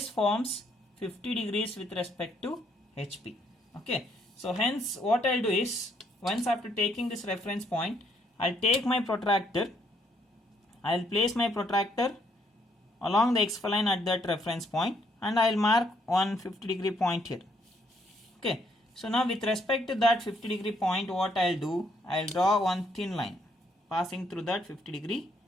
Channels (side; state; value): both; normal; correlation 0.70